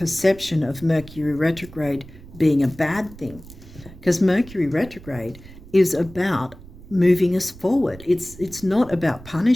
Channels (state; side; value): noise; right; rumble, 19 dB below the sound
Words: of Mercury retrograde being a bad thing, because Mercury retrograde is about moving us forward. It's not about